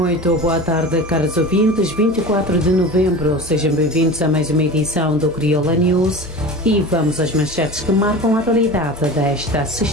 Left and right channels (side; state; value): both; normal; correlation 0.33